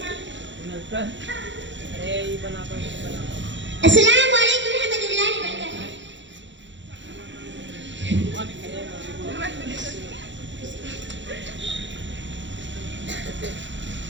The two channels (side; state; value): left; late; 0.54 ms